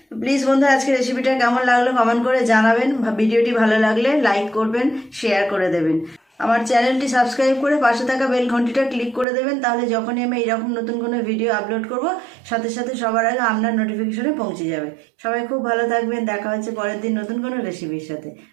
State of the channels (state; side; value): drops out; left; at 9.2 s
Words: প্লিজ বন্ধুরা, আজকে রেসিপিটা কেমন লাগলো কমেন্ট করে জানাবেন। ভিডিওটি ভালো লাগলে লাইক করবেন, শেয়ার করে দেবেন। আমার চ্যানেলটি সাবস্ক্রাইব করে পাশে থাকা বেল ঘন্টিটা ক্লিক করে দেবেন। তাহলে যখনই আমি এরকম নতুন কোনো ভিডিও আপলোড করব, সাথে সাথে সবার আগে আপনার নোটিফিকেশনে পৌঁছে যাবে। সবাই খুব ভালো থাকবেন। দেখা হচ্ছে পরের দিন নতুন কোনো রেসিপির সাথে।